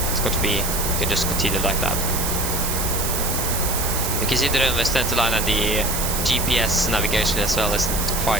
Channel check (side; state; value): right; noise; hiss, 2 dB below the sound